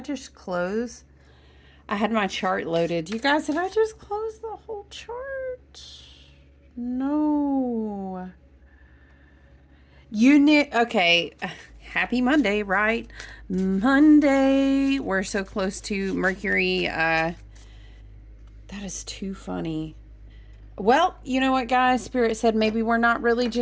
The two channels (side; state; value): both; identical; correlation 1.00